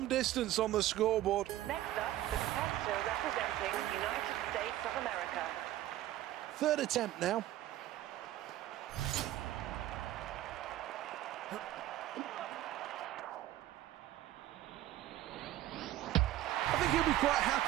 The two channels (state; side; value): quieter; left; 14.0 dB